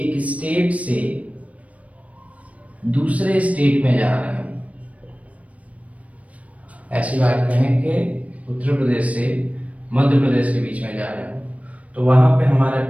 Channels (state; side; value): late; left; 0.067 ms